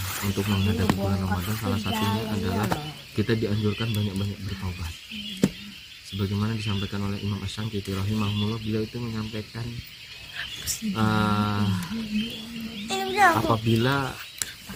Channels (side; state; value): both; identical; correlation 1.00